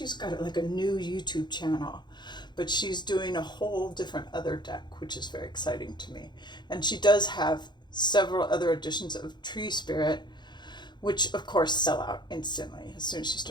got like a new YouTube channel, but she's doing a whole different other deck, which is very exciting to me. And she does have several other editions of Tree Spirit, which of course sell out instantly as soon as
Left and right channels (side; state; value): right; late; 0.21 ms